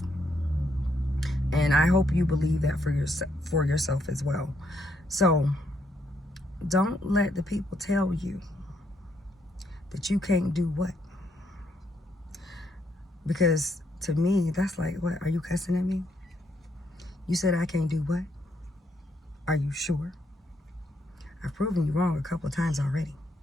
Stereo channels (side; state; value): both; normal; correlation 0.75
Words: And I hope you believe that for yourself as well. So don't let the people tell you that you can't do what. Because to me, that's like, what? Are you cussing at me? You said I can't do what? Are you sure? I've proven you wrong a couple of times already.